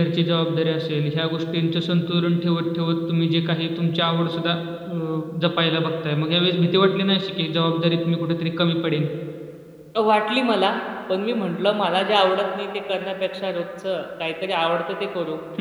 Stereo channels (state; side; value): identical; both; correlation 1.00